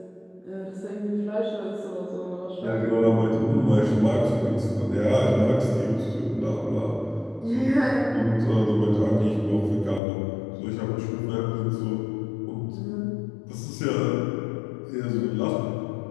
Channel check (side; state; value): right; drops out; at 10.0 s